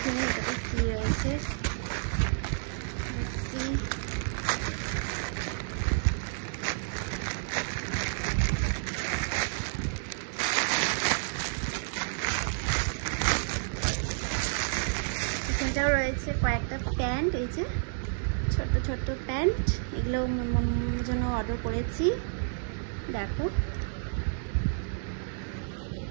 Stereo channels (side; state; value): left; silent; digital silence